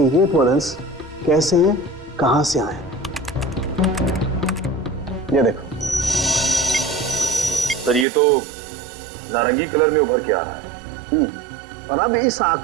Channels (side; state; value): left; drops out; at 8.1 s